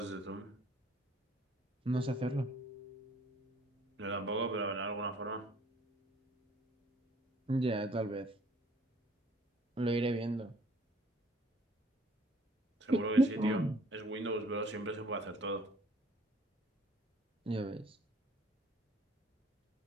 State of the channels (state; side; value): normal; both; correlation 0.58